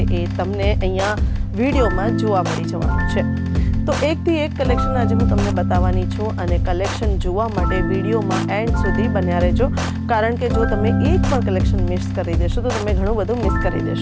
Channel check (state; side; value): identical; both; correlation 1.00